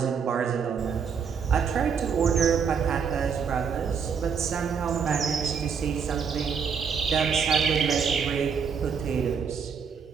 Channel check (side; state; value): left; quieter; 6.4 dB